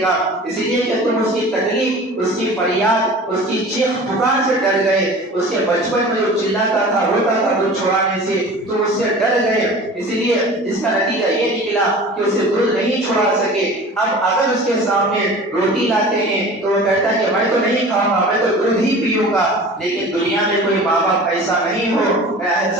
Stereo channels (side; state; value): both; normal; correlation 0.40